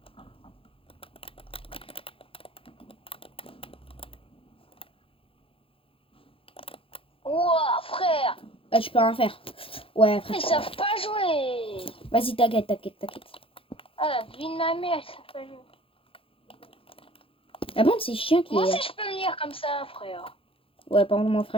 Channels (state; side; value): late; right; 0.27 ms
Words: Ouah, frère! Ah, tu peux rien faire. Ouais, frère. Ils savent pas jouer! Vas-y, t'inquiète. Ah, la vie de ma mère, ils savent pas jouer. La bande, c'est chiant qui Moi est. aussi, je peux venir comme ça, frère. Ouais, par contre, mon